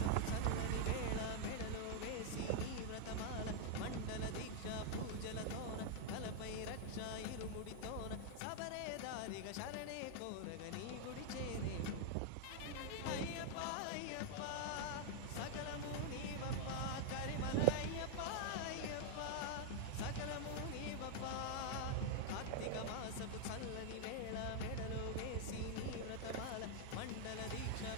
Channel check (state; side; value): different; both; correlation 0.00